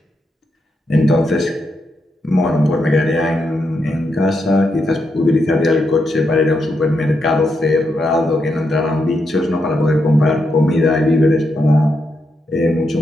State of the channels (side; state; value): both; normal; correlation 0.83